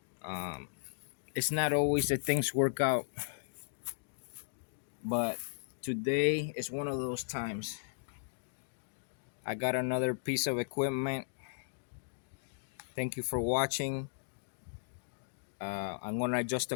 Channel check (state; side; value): silent; right; digital silence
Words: Um, it's not always that things work out, but today is one of those times. I got another piece of equipment. Thank you for watching. I'm gonna adjust